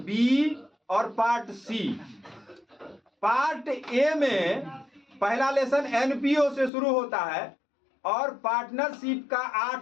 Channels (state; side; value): drops out; right; at 6.7 s